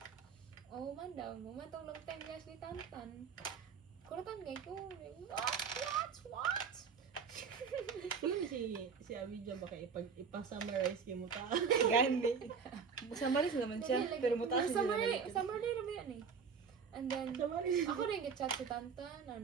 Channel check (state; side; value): quieter; left; 6.0 dB